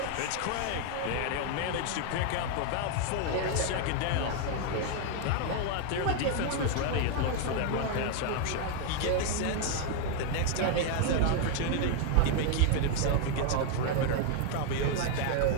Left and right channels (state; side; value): different; both; correlation 0.01